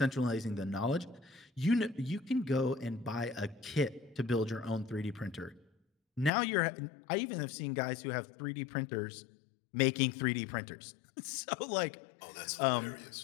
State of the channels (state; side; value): drops out; right; at 6.3 s